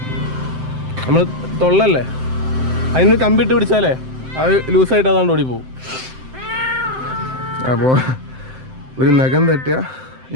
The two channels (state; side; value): late; left; 7.7 ms